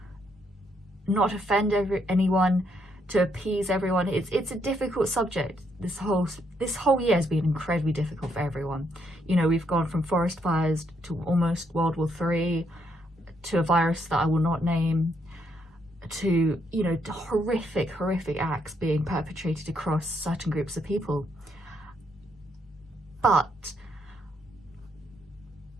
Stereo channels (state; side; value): normal; both; correlation 0.74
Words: not offend anyone, to appease everyone. It's a difficult subject. This whole year has been incredibly difficult for everyone. You know, we've gone from forest fires to almost World War III, to a virus that I will not name, to, you know, horrific acts being perpetrated across certain groups of people. But